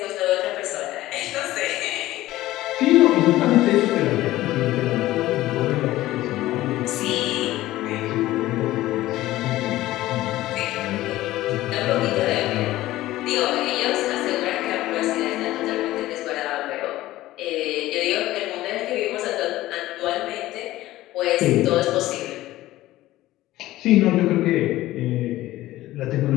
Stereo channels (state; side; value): quieter; right; 16.1 dB